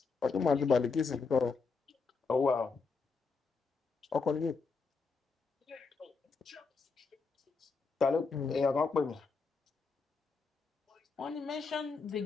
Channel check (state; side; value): quieter; right; 4.6 dB